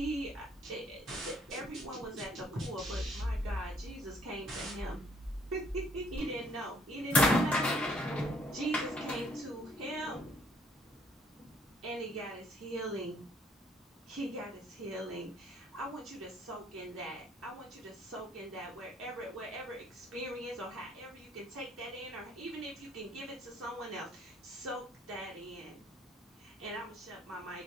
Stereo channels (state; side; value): normal; both; correlation 0.63